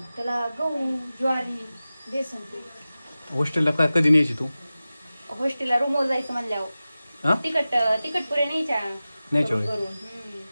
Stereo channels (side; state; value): both; inverted; correlation -0.96